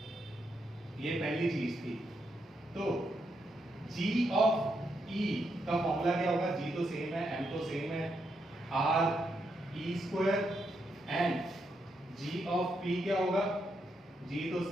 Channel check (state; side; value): normal; both; correlation 0.81